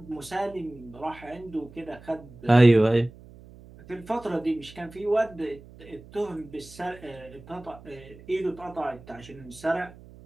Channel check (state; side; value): noise; right; hum, 20 dB below the sound